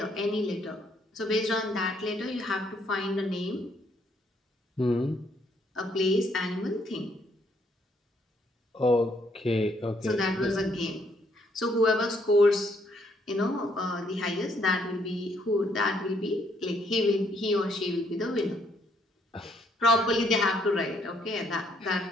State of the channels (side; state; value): both; normal; correlation 0.70